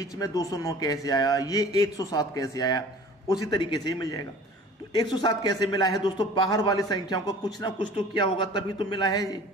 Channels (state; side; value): normal; both; correlation 0.45